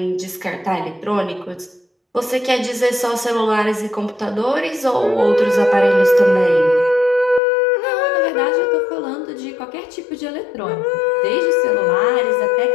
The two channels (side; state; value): right; drops out; at 7.4 s